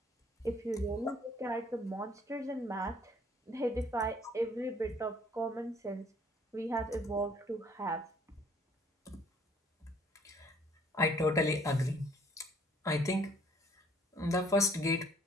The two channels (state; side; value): normal; both; correlation 0.58